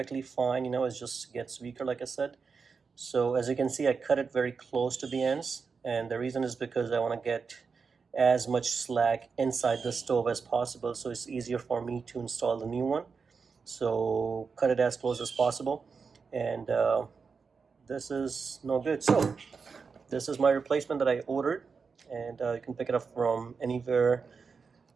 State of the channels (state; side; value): quieter; left; 5.2 dB